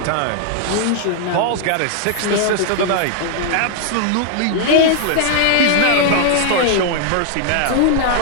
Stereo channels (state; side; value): different; both; correlation 0.00